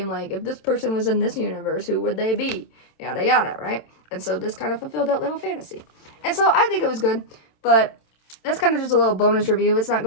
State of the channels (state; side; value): late; right; 27 ms